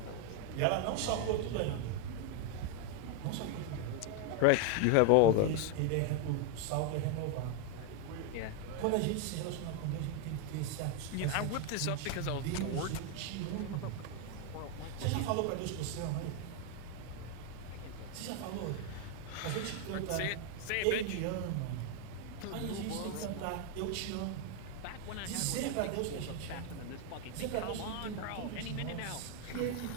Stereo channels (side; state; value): both; different; correlation 0.01